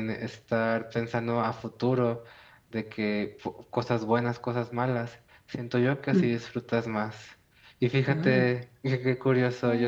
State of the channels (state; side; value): identical; both; correlation 1.00